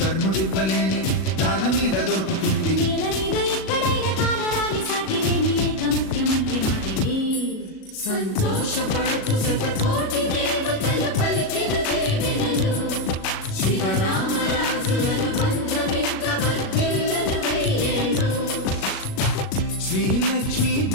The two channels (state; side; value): late; right; 37 ms